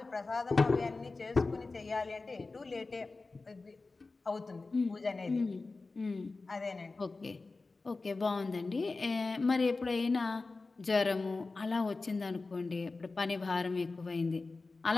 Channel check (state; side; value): quieter; right; 3.7 dB